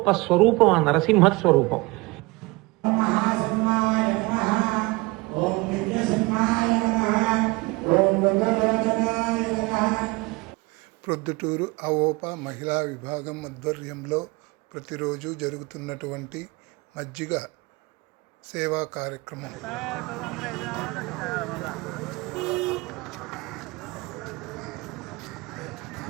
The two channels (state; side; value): quieter; left; 24.2 dB